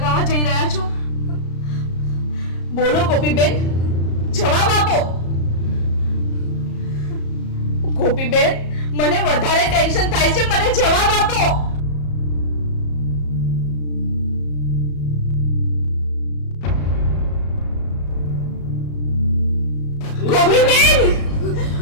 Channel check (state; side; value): late; right; 34 ms